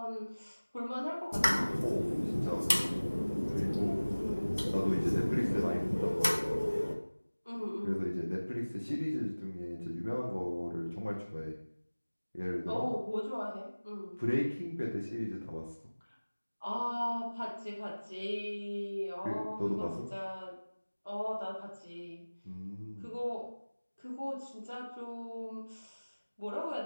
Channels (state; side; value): inverted; both; correlation -1.00